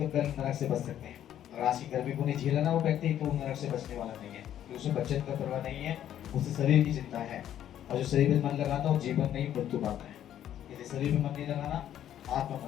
कल नरक से बच सकते हैं। और आज की गर्मी को नहीं झेला ना वो व्यक्ति, तो नरक से बचने वाला नहीं है, क्योंकि उसे बचने का परवाह नहीं है, उसे शरीर की चिंता है। और जो शरीर में मन लगाता है वो जीवन नहीं मृत्यु पाता है। यदि शरीर में मन नहीं लगाना, आत्मा मन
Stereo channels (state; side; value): quieter; right; 11.0 dB